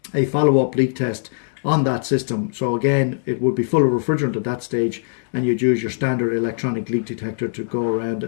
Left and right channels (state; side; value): silent; right; digital silence